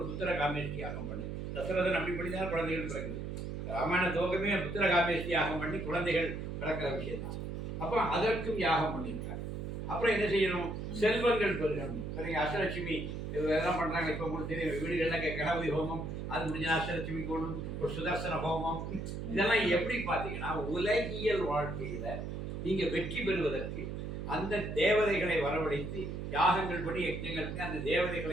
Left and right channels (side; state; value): right; noise; hum, 5 dB below the sound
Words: புத்திர காமேஷ்டி யாகம் பண்ணு. தசரதன் அப்படி பண்ணி தான் குழந்தைகள் பிறகுது. ராமாயண துவக்கமே புத்திர காமேஷ்டி யாகம் பண்ணி குழந்தைகள் பிறக்கிற விஷயம் தான். அப்போ அதற்கும் யாகம் பண்ணியிருக்காங்க. அப்புறம் என்ன செய்யணும்? செல்வங்கள் பெருகணும். இப்போ அஷ்டலட்சுமி இதெல்லாம் பண்றாங்க. இப்போ உங்களுக்கு தெரியும், வீடுகளில் கணபதி ஹோமம், அது முடிஞ்ச அஷ்டலட்சுமி கோணும், ஒரு சுதர்சன ஹோமம், இதெல்லாம் எப்படி பார்த்தீங்கன்னா உலகியல் வாழ்க்கையில நீங்க வெற்றி பெறுவதற்கு அந்த தேவதைகளை வரவழைத்து யாகங்கள் படி யஜ்ஞங்கள் பண்ணி அந்த